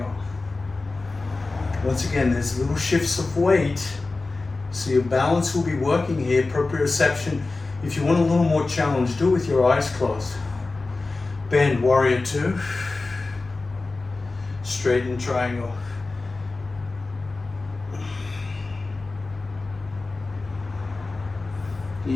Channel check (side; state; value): right; quieter; 3.5 dB